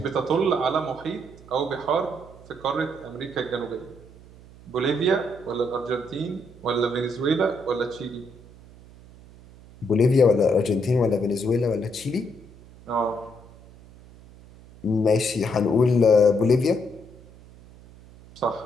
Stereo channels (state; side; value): noise; right; hum, 22 dB below the sound